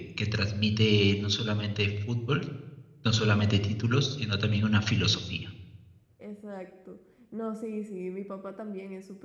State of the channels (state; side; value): identical; both; correlation 1.00